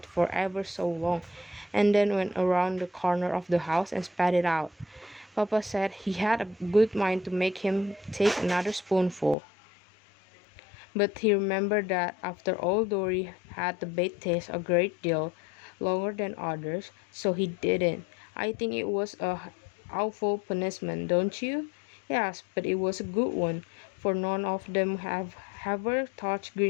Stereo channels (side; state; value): right; drops out; at 9.3 s